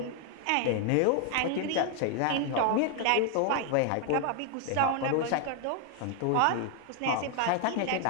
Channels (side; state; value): both; different; correlation 0.00